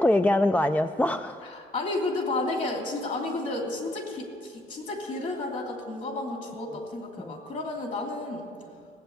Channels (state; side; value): normal; both; correlation 0.70